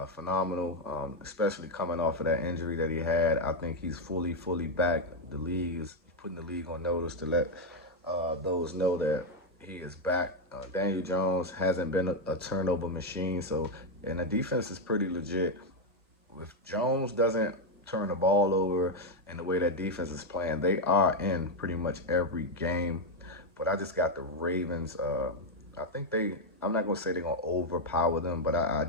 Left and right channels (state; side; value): normal; both; correlation 0.04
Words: phenomenal, especially coming off of that injury that he had. I think he's fully back. The league is putting the league on notice to let those know that he is back. Daniel Jones hasn't been a turnover machine, and the defense is pretty legit. If Jones doesn't turn the ball over and the way that defense is playing, they are in pretty much every game. But I just got the Ravens. I think I'm not going to say they're going to overpower them, but I